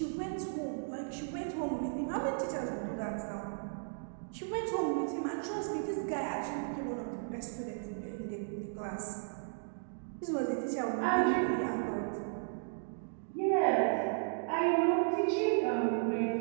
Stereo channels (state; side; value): silent; left; digital silence